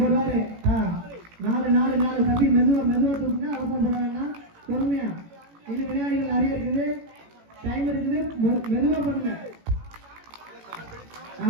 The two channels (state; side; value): late; left; 18 ms